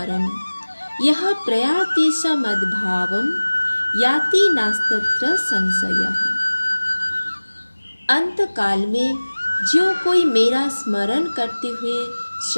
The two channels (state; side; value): inverted; both; correlation -1.00